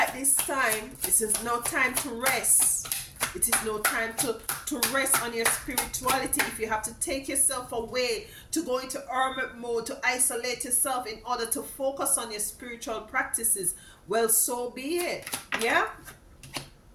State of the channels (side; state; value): both; identical; correlation 1.00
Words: this time. This is no time to rest. It is no time to rest on your spirituality. If you have to take yourself away, to go into hermit mode, to isolate yourself in order to focus on your spiritual practices, well, so be it. Yeah,